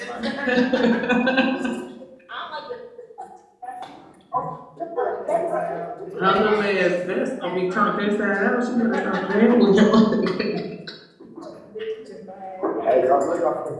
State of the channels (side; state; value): both; identical; correlation 1.00